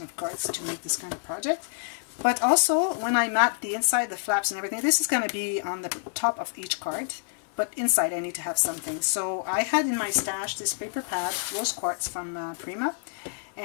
of cards to make this kind of project. But also, when I mat the inside, the flaps and everything, this is going to be on the top of each card. But inside I need to have something. So I had in my stash this paper pad, rose quartz from Prima,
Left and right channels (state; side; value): silent; right; digital silence